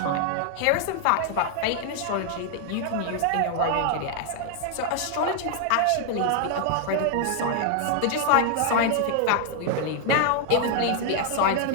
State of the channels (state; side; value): different; both; correlation 0.00